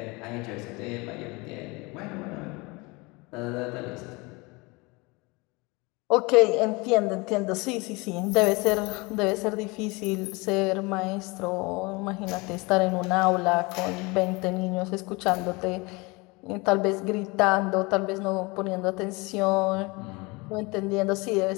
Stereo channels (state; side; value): quieter; right; 25.9 dB